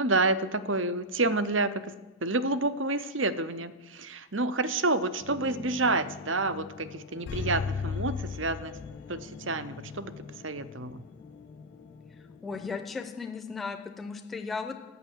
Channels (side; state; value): both; normal; correlation -0.06